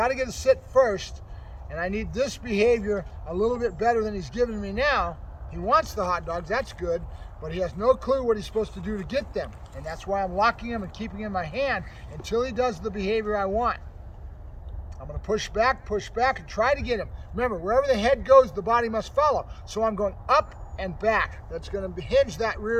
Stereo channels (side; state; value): both; identical; correlation 1.00